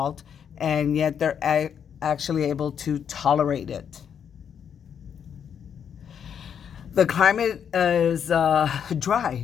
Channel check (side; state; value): right; quieter; 8.0 dB